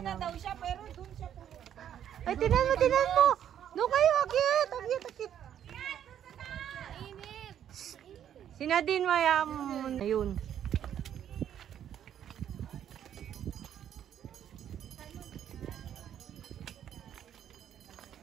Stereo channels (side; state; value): left; quieter; 9.9 dB